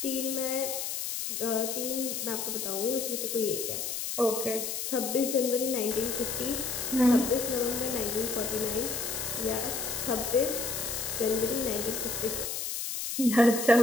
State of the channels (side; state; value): left; noise; hiss, 3 dB below the sound